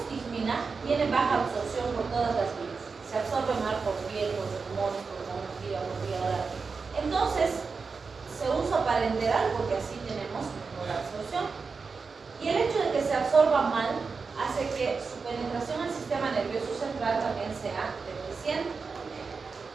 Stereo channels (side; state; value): left; quieter; 4.8 dB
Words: tiene baja absorción por todas las vías. Se absorbe mal por piel, por pulmones, por hemorragia, por vía. Entonces, se usa para enterar porque así tenemos mejor absorción. Y el hecho de que se absorba mal hace que su penetración al sistema nervioso central también sea deficiente.